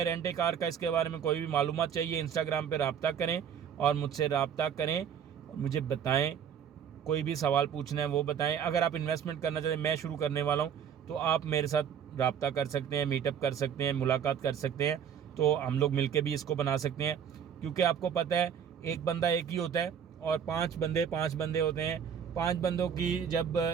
रेंट ए कार का। इसके बारे में कोई भी मालूमात चाहिए, इंस्टाग्राम पे रब्ता करें और मुझसे रब्ता करें, मुझे बताएं। कोई भी सवाल पूछना है वो बताएं। अगर आप इन्वेस्टमेंट करना चाहते हैं, मैं शुरू करने वाला हूँ, तो आप मेरे साथ रब्ता कर सकते हैं, मीटअप कर सकते हैं, मुलाकात कर सकते हैं। तो हम लोग मिलके भी इसको बना सकते हैं, क्योंकि आपको पता है एक बंदा एक ही होता है और 5 बंदे होते हैं। 5 बंदों की जब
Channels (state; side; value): quieter; left; 8.1 dB